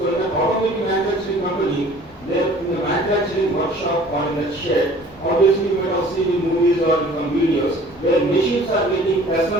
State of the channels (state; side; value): normal; both; correlation 0.50